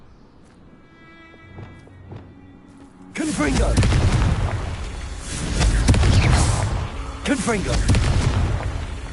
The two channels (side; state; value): both; identical; correlation 1.00